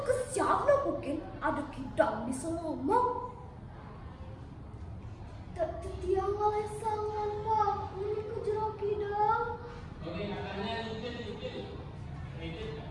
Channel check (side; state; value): both; identical; correlation 1.00